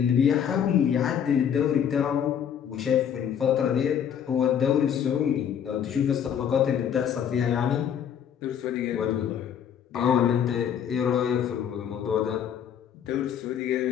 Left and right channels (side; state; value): right; quieter; 8.6 dB